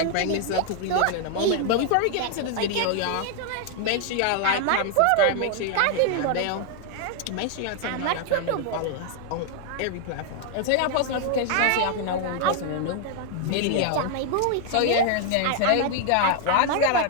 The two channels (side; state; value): both; different; correlation 0.00